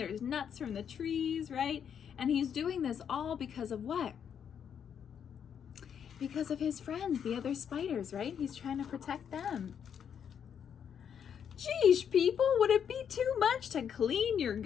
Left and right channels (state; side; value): quieter; right; 8.1 dB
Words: nuts from the trees, right? And he's doing this all because of what? Because of his friends, the other spiders, right? He's trying to protect them. Geesh, people, would it be too much to clean your